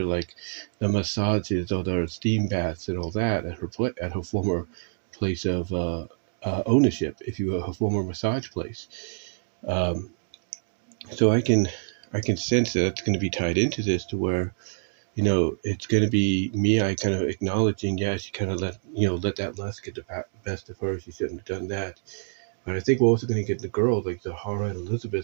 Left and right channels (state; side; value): silent; left; digital silence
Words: like the massages or the steam baths and all that at her former place of ownership, if you will, her former massage place. So I can sense that it's going to be tied into this, to where, it's going to be Mei kind of acknowledging, she kind of let that lust get the best of her. She shouldn't have done that. But I think we're also going to get the girls like Zarha and